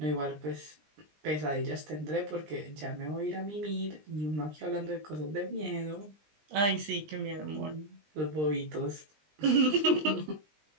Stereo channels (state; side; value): late; left; 20 ms